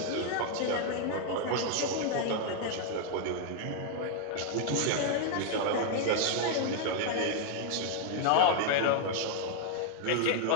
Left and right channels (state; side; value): different; both; correlation 0.00